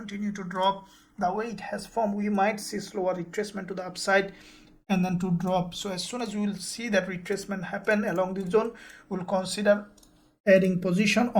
to drop. The way it has formed, we might see slower retracement to the upside and then to drop. So as soon as we will see that retracement happen along this zone, we'll consider adding position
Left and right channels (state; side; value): identical; both; correlation 1.00